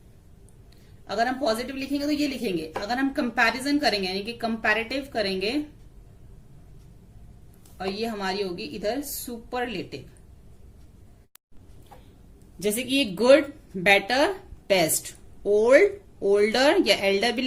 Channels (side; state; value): both; identical; correlation 1.00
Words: अगर हम पॉजिटिव लिखेंगे तो ये लिखेंगे, अगर हम कंपैरिजन करेंगे यानी कि कंपैरेटिव करेंगे और ये हमारी होगी इधर सुपरलेटिव। जैसे कि ये good, better, best, old, older या एल्डर भी